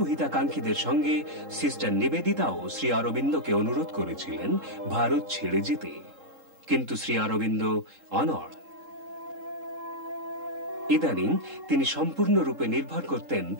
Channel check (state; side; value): late; left; 3.7 ms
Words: হিতাকাঙ্ক্ষীদের সঙ্গে সিস্টার নিবেদিতাও শ্রী অরবিন্দকে অনুরোধ করেছিলেন ভারত ছেড়ে যেতে, কিন্তু শ্রী অরবিন্দ অনড়। ইদানিং তিনি সম্পূর্ণরূপে নির্ভর করতেন